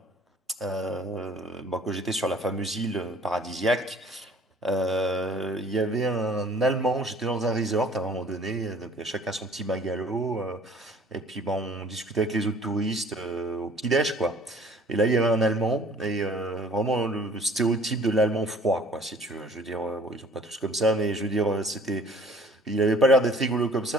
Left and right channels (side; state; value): both; normal; correlation 0.53